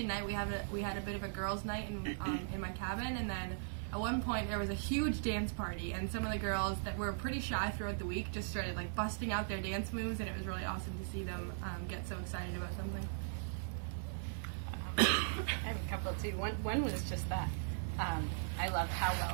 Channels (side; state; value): left; silent; digital silence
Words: night. We had a bit of a girls' night in my cabin, and then at one point there was a huge dance party, and some of the girls that were pretty shy throughout the week just started like busting out their dance moves, and it was really awesome to see them get so excited about something. I have a couple too. One was just that I loved how